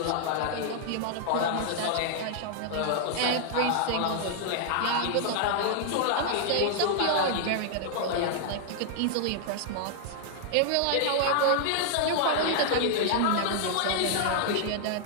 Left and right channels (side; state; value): both; different; correlation -0.01